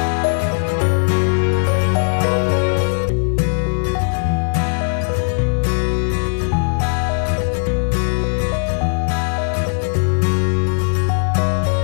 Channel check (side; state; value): right; silent; 56 dB below the other